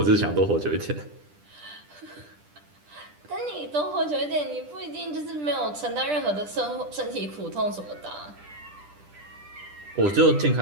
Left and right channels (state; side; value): late; left; 10 ms